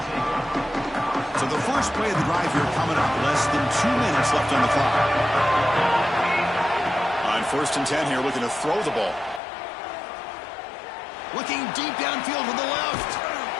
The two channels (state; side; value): drops out; right; at 9.4 s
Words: So the first play of the drive here coming up. Less than 2 minutes left on the clock. On 1st and 10 here, looking to throw the ball. Looking deep downfield to the left.